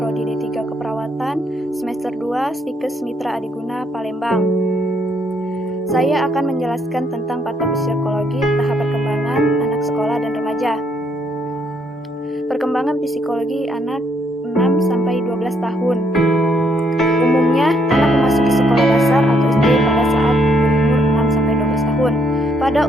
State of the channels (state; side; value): normal; both; correlation 0.71